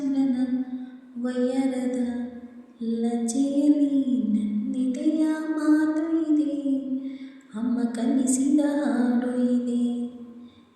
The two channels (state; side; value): identical; both; correlation 1.00